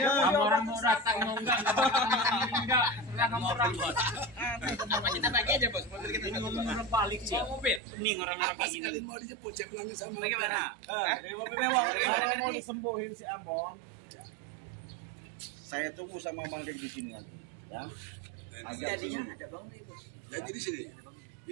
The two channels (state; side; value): drops out; left; at 7.8 s